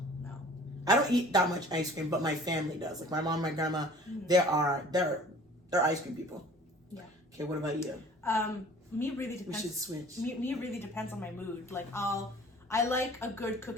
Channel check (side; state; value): both; normal; correlation 0.49